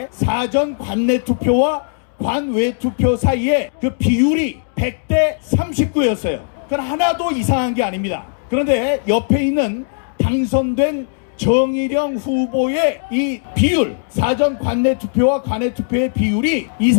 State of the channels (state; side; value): silent; right; digital silence